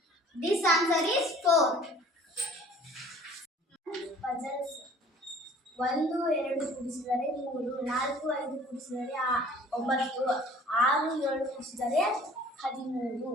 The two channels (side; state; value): both; normal; correlation 0.51